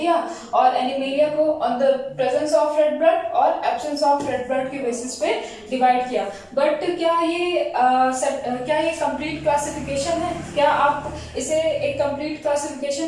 और एनिमेलिया को on the presence of red blood और एब्सेंस ऑफ रेड ब्लड के बेसिस पे डिवाइड किया। बट क्या ये कंप्लीट क्लासिफिकेशन है? क्या आप इसे एक कंप्लीट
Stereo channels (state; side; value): identical; both; correlation 1.00